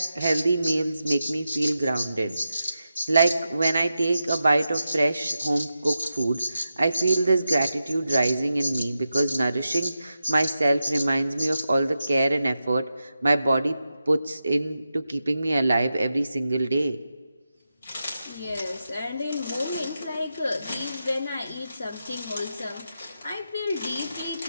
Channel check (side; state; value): both; inverted; correlation -0.90